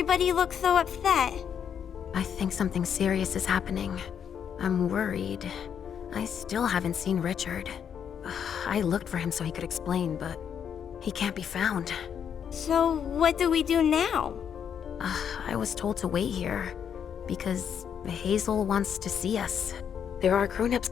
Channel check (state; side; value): quieter; right; 8.1 dB